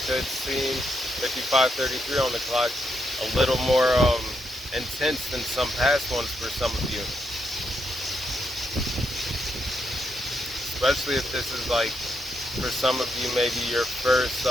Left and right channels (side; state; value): both; normal; correlation 0.80